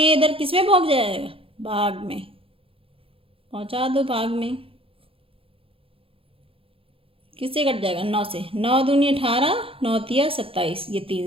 इधर किस में पहुंच जाएगा? भाग में पहुंचा दो, भाग में। किससे कट जाएगा? 9 से। 9 दूनी 18, 9 तिया 27, ये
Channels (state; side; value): late; left; 0.27 ms